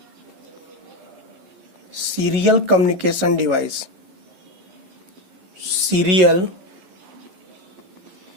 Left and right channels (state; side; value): late; left; 11 ms